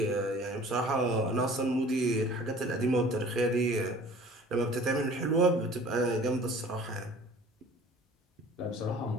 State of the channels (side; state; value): both; normal; correlation 0.48